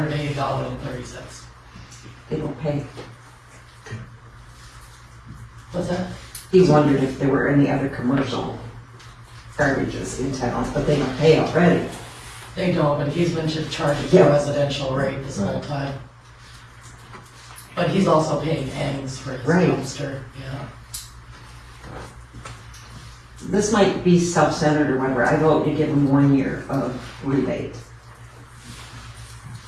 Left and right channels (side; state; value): both; identical; correlation 1.00